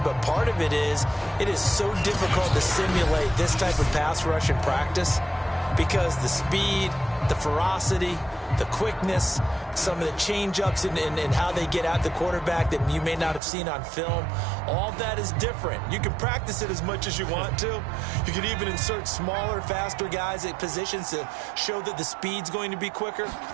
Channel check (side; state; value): left; drops out; at 13.4 s